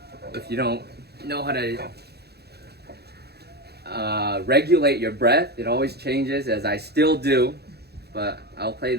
don't know how to regulate your breath, it always changes, as I still do. But I'll play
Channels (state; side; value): late; left; 0.47 ms